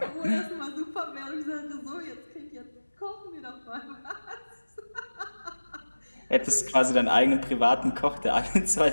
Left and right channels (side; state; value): both; inverted; correlation -1.00